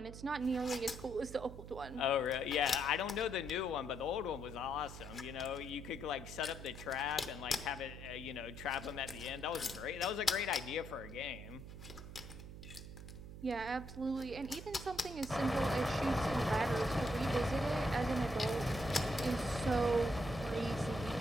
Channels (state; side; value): noise; right; hum, 12 dB below the sound